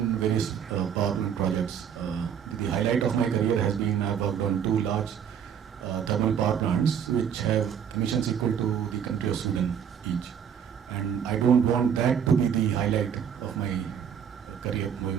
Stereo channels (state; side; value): quieter; left; 8.2 dB